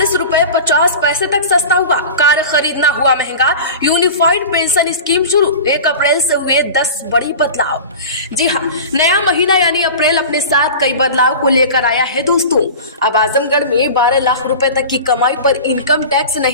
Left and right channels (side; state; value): both; inverted; correlation -0.34